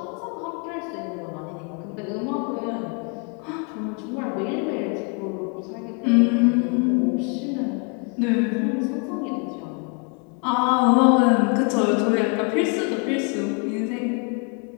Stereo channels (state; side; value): quieter; right; 35.6 dB